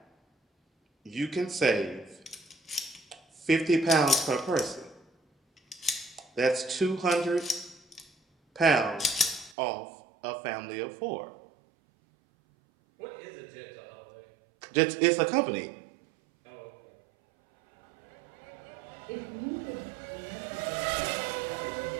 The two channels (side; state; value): left; drops out; at 9.6 s